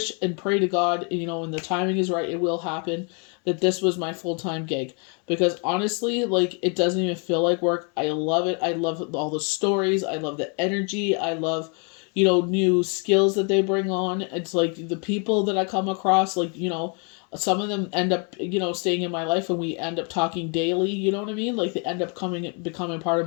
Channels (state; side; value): quieter; right; 36.6 dB